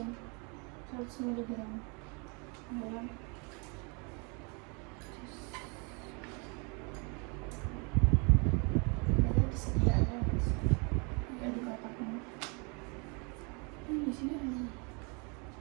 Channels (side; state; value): left; quieter; 32.9 dB